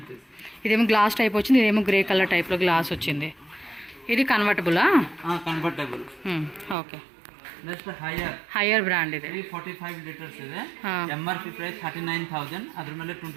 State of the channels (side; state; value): left; drops out; at 6.8 s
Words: ఇదేమో గ్లాస్ టైప్ వచ్చింది, ఇదేమో గ్రే కలర్ టైప్ లో గ్లాస్ వచ్చింది. ఇది కన్వర్టబులా? Convertible. Okay, next Haier brand ఇది. 345 లీటర్స్ ಇದೆ. MRP price 39,000. అದ್ರ ಮೇಲೆ